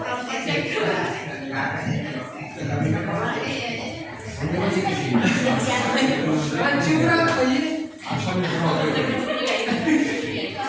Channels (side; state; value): both; identical; correlation 1.00